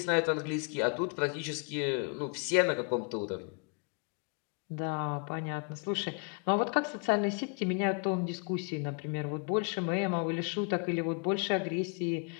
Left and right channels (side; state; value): right; quieter; 36.6 dB